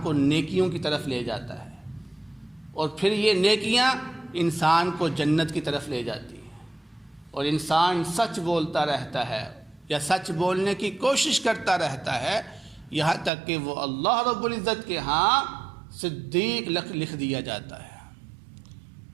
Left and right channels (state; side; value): drops out; left; at 13.3 s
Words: کو نیکیوں کی طرف لے جاتا ہے۔ اور پھر یہ نیکیاں انسان کو جنت کی طرف لے جاتی ہیں، اور انسان سچ بولتا رہتا ہے یا سچ بولنے کی کوشش کرتا رہتا ہے یہاں تک کہ وہ اللہ رب العزت کے ہاں صدیق لکھ دیا جاتا ہے۔